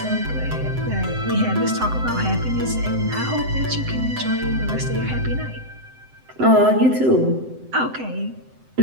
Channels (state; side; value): late; left; 7.8 ms